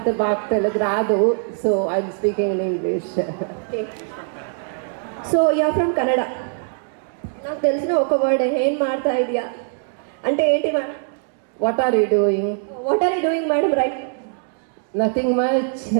బాగా తెలుగు రాదు, so I'm speaking in English. So you're from Kannada. నాకు తెలిసిన ఒక వర్డ్ ఏం మాడతా ఇదియా అంటే ఏంటి madam? What are you doing? What are you doing madam? Right. Nothing much.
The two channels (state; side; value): silent; left; digital silence